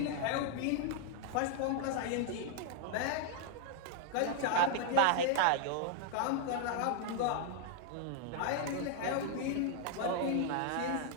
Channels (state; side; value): different; both; correlation 0.00